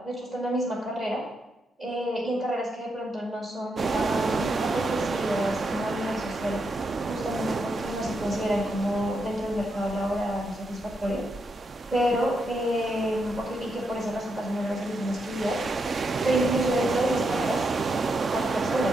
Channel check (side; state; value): both; normal; correlation 0.82